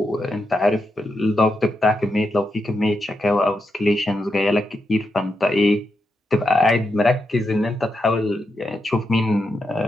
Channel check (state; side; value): normal; both; correlation 0.85